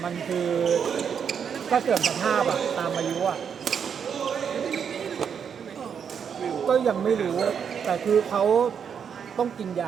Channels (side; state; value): left; quieter; 7.3 dB